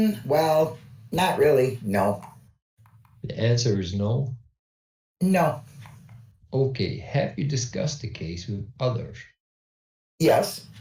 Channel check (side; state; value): both; identical; correlation 1.00